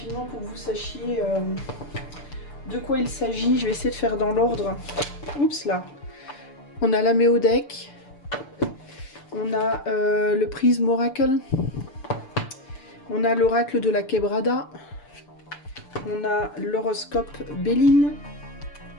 pour que vous sachiez de quoi il s'agit. Je vais essayer de faire dans l'ordre. Oups là. On a la Méodec. On a le Prisme Oracle. On a l'oracle de la Quebrada. On a l'horoscope Béline.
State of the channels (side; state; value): right; late; 6.8 ms